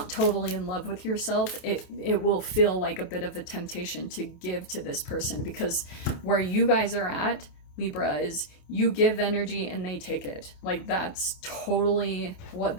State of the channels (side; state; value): right; late; 28 ms